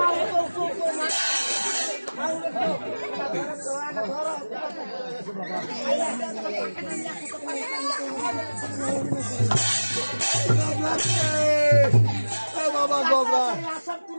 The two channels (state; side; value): inverted; both; correlation -1.00